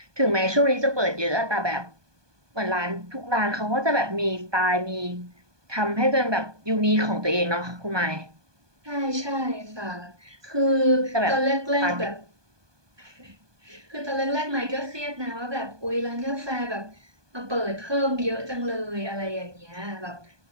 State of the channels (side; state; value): left; late; 1.2 ms